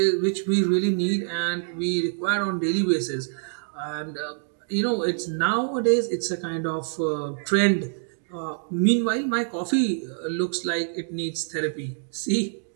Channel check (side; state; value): left; silent; digital silence